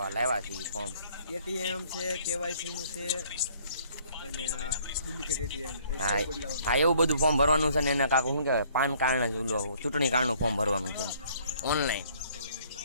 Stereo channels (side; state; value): both; inverted; correlation -0.60